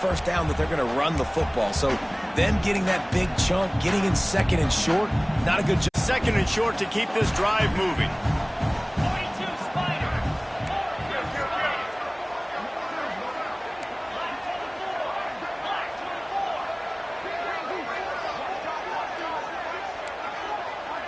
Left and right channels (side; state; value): both; identical; correlation 1.00